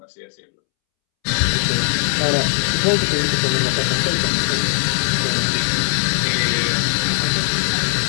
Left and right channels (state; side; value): silent; right; 67 dB below the other